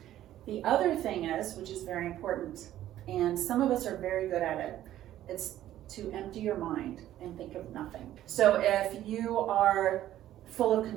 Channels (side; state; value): left; quieter; 12.9 dB